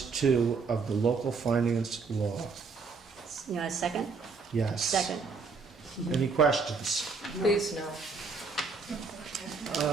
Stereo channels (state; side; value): quieter; left; 4.7 dB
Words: of the local finance law. You want a second? Yes. Second. Any questions? Please, no.